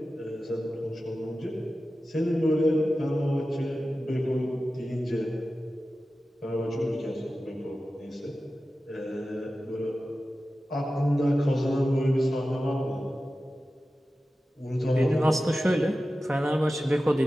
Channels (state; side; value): normal; both; correlation 0.94